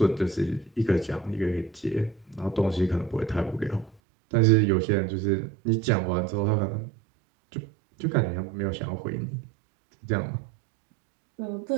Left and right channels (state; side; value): drops out; left; at 4.0 s